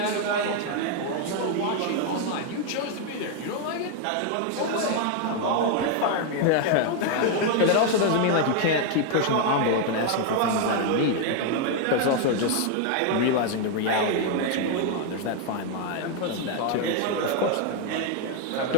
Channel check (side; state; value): both; different; correlation 0.01